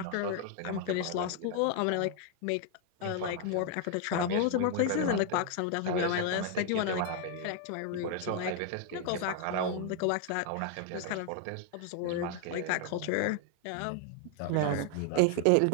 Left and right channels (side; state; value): both; different; correlation 0.00